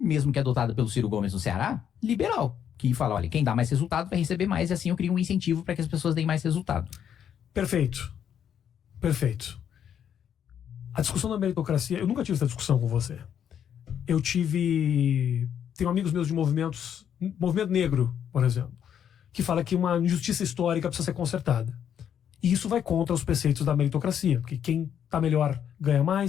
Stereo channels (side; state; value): right; quieter; 9.0 dB